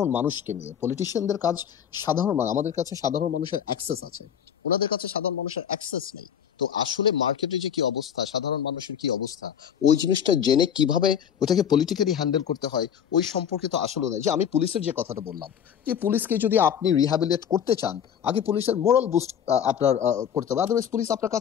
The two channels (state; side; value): quieter; right; 8.6 dB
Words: মানুষকে নিয়ে, পলিটিশিয়ানদের কাজ সাধারণ মানুষ, আমাদের কাছে সাধারণ মানুষের অ্যাক্সেস আছে, ওনাদের কাছে সাধারণ মানুষের অ্যাক্সেস নেই। তো আসলে মার্কেটে যে কি অবস্থা, সাধারণ মানুষের কি অবস্থা, ওই জিনিসটা জেনে কিভাবে ওটাকে পলিটিক্যালি হ্যান্ডেল করতে হয় ওই সম্পর্কে তো আসলে নাই। যে আমি পুলিশের যে কথাটা বললাম, যে পুলিশকে যদি আপনি রিহ্যাবিলিটেট করতে চান, আগে পুলিশের মোরাল বুস্ট আপনার করতে হবে, আদারওয়াইজ পুলিশ আপনার